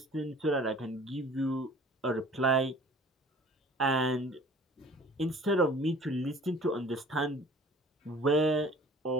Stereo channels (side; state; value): both; normal; correlation 0.49